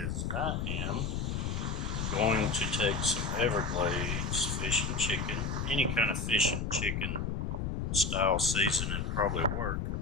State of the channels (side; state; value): left; noise; rumble, 1 dB below the sound